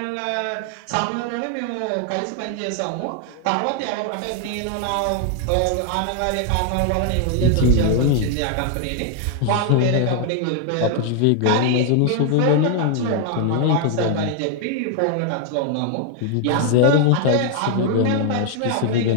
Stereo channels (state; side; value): different; both; correlation 0.00